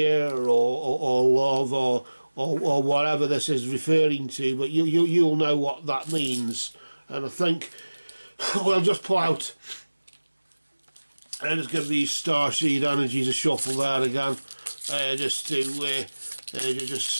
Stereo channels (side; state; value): both; inverted; correlation -1.00